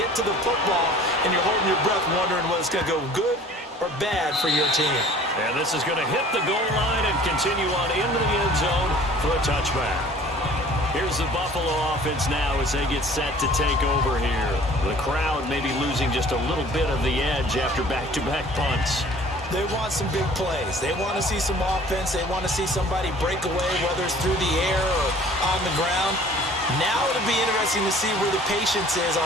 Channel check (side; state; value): both; normal; correlation 0.50